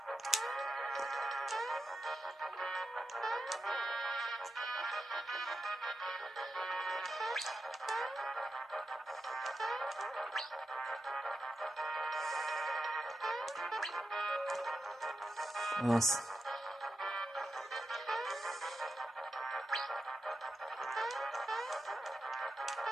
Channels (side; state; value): both; normal; correlation 0.88